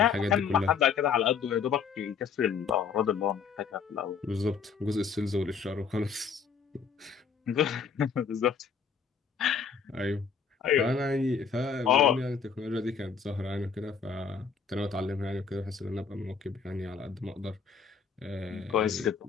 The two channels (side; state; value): right; quieter; 6.2 dB